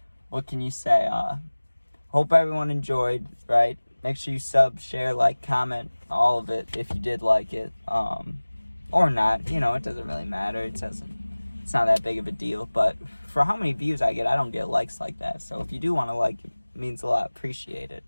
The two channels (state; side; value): inverted; both; correlation -1.00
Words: what can you say? Hope everyone enjoyed, right? Make sure you sub, share, like, comment, all of it if you did like it. Or not, you know, it doesn't really matter. It's not that big of a deal. But for how many views I get, I don't get likes like that. So if you do want to like it, means a lot. Appreciate it.